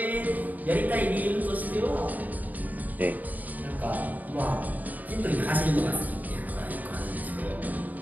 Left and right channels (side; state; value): left; late; 0.080 ms